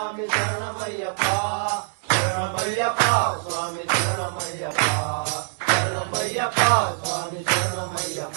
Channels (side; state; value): left; silent; digital silence